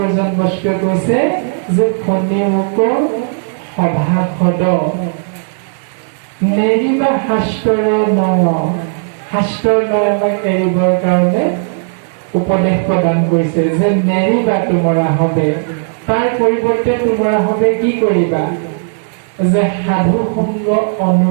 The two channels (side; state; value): left; silent; digital silence